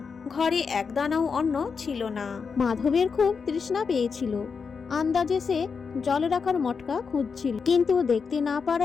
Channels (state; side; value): quieter; right; 5.6 dB